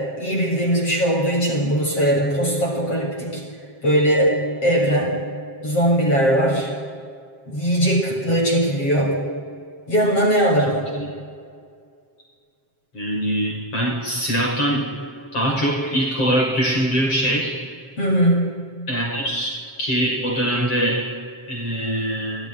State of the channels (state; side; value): late; right; 7.5 ms